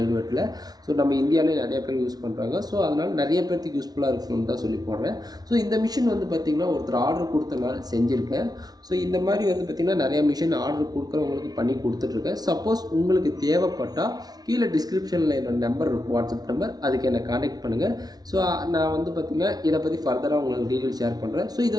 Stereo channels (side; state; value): left; late; 0.19 ms